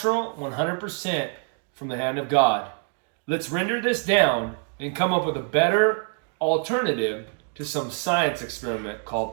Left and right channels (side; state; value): left; quieter; 39.7 dB